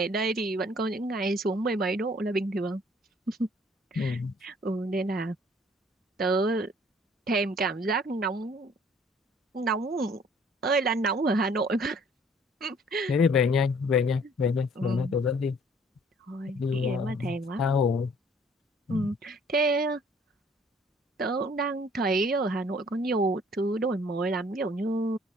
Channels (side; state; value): both; normal; correlation 0.57